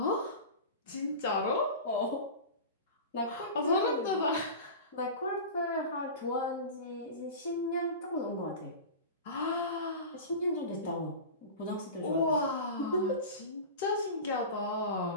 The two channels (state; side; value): inverted; both; correlation -0.30